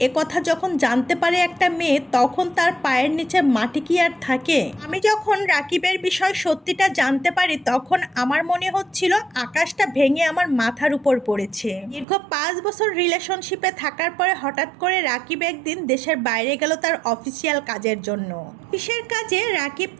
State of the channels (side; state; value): left; drops out; at 12.1 s